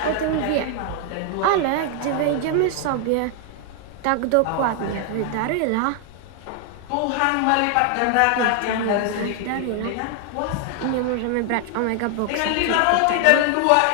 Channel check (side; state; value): both; different; correlation 0.00